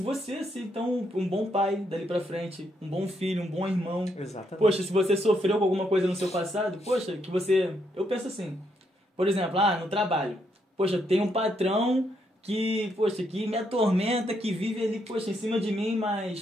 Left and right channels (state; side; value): normal; both; correlation 0.76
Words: a ser então um bom pai dali pra frente, um bom filho, um bom irmão. Exatamente. Poxa, se você sofreu com alguma coisa no seu passado, poxa, eu penso assim, por exemplo, no trabalho, poxa, tem um patrão que me atormenta, que vive ali, poxa, em cima de mim,